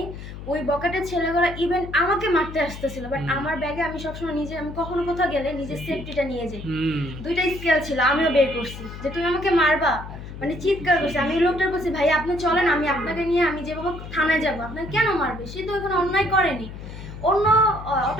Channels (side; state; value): left; noise; hum, 11 dB below the sound